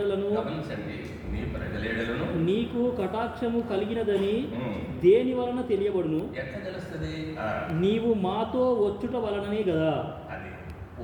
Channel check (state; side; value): identical; both; correlation 1.00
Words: గమనించండి, నీ ప్రజల ఎడలను నీకు కటాక్షము కలిగినదని దేని వలన తెలియబడును? ఎట్లా తెలుస్తుంది? నీవు మాతో వచ్చుట వలననే కదా. అది